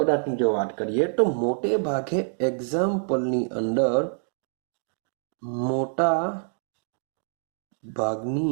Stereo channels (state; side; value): silent; left; digital silence